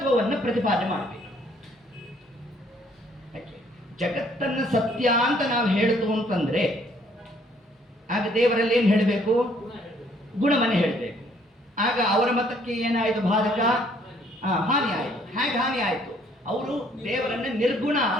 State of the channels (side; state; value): both; normal; correlation 0.64